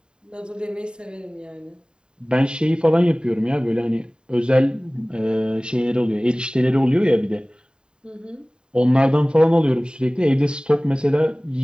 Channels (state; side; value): late; left; 0.049 ms